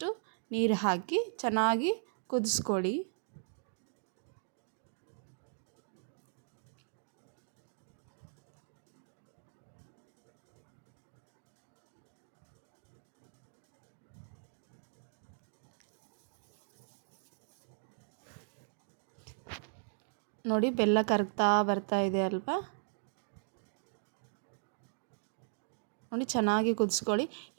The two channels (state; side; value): silent; left; digital silence